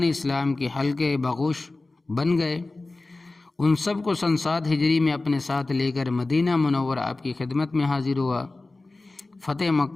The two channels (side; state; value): right; quieter; 3.2 dB